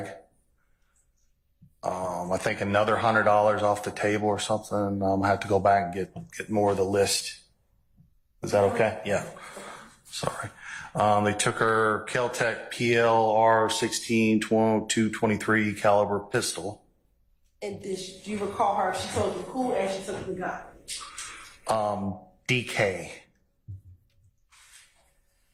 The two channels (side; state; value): both; identical; correlation 1.00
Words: I think another $100 off the table or something. I have to go back and get more of the list. Is that okay? Yeah. Sorry. They took her Kel-Tec PLR 16 223 caliber pistol. And do you recall her? She told you who and she took the gun. DK.